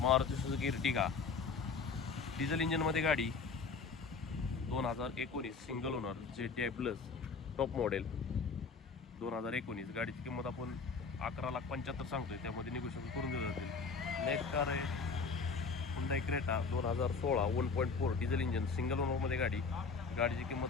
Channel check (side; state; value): right; quieter; 4.9 dB